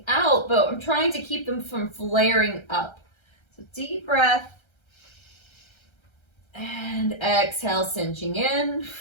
out, but I'm trying to keep them from flaring up. So deep breath. And exhale, cinching in.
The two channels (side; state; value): right; late; 1.3 ms